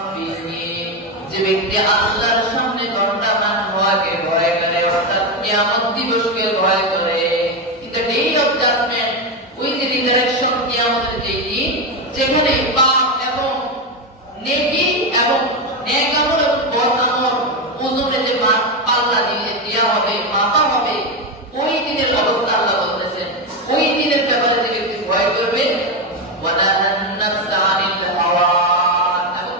যে ব্যক্তি আল্লাহর সামনে দণ্ডায়মান হওয়াকে ভয় করে, অর্থাৎ কিয়ামত দিবসকে ভয় করে। এটা ডে অফ জাজমেন্ট, ওই যে রিজারেকশন, কিয়ামতের যে দিন যেখানে পাপ এবং নেকি এবং নেক আমল এবং বদ আমল ওজনে যে পাল্লা দিয়ে দেওয়া হবে, মাপা হবে, ওই দিনের অবস্থা আল্লাহ বলতেছেন। ওই দিনের ব্যাপারে যে ব্যক্তি ভয় করবে, ওয়ানাহান নাফসা আনিল হাওয়া, এবং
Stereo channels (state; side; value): normal; both; correlation 0.10